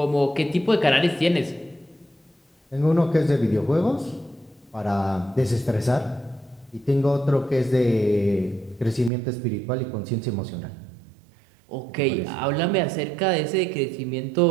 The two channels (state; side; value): drops out; left; at 9.1 s